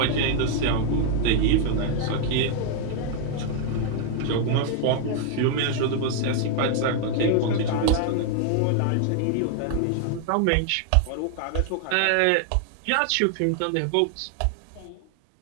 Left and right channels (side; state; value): both; different; correlation 0.00